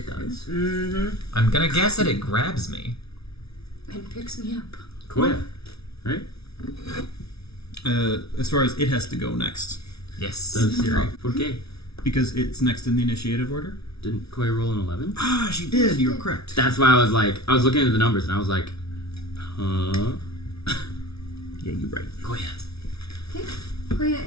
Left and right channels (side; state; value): right; late; 0.78 ms